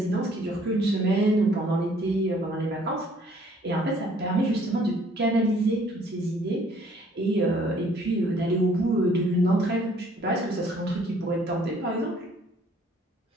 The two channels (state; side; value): normal; both; correlation 0.59